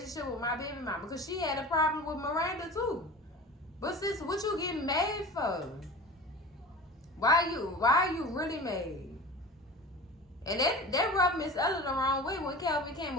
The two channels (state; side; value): normal; both; correlation 0.35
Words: with my baby mama because she had a problem with Miranda too. But sis, what you getting mad for? Why are you really mad? And that rubbed Miss Ella the wrong way when Calvin